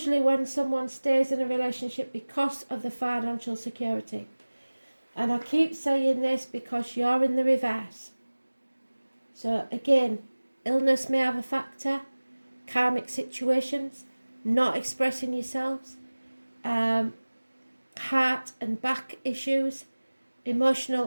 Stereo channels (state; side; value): inverted; both; correlation -1.00